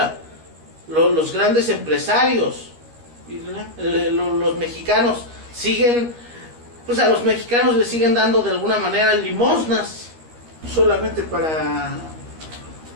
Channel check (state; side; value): late; left; 13 ms